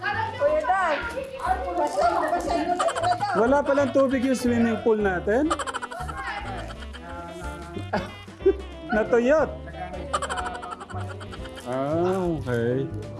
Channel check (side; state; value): both; identical; correlation 1.00